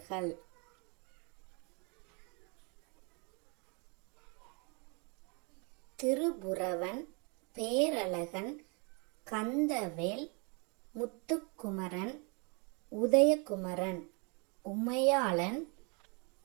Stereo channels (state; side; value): quieter; left; 33.5 dB